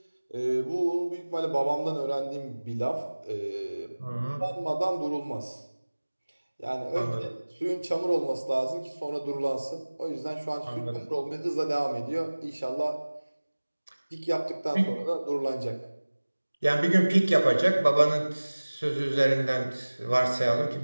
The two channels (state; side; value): inverted; both; correlation -1.00